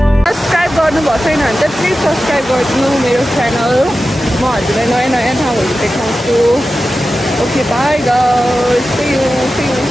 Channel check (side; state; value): both; normal; correlation 0.93